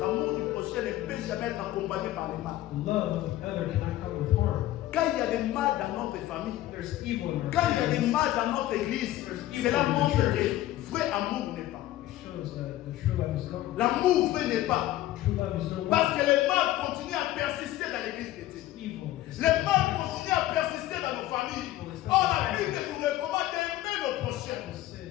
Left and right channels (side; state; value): right; quieter; 14.9 dB